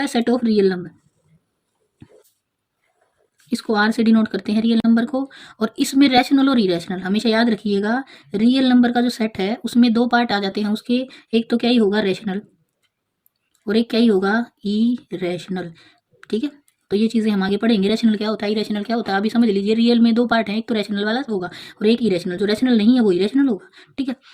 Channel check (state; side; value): identical; both; correlation 1.00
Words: है सेट ऑफ रियल नंबर। इसको आर से डिनोट करते हैं रियल नंबर को। और इसमें रैशनल और इरेशनल हमेशा याद रखिएगा। रियल नंबर का जो सेट है उसमें दो पार्ट आ जाते हैं उसके, एक तो क्या ही होगा, रेशनल, और एक क्या ही होगा, इरेशनल, ठीक है। तो ये चीज़ें हम आगे पढ़ेंगे, रैशनल क्या होता है, इरेशनल क्या होता है। अभी समझ लीजिए रियल में दो पार्ट हैं, एक तो रैशनल वाला होगा और एक इरेशनल। जो रैशनल नहीं है वो इरेशनल होगा, ठीक है।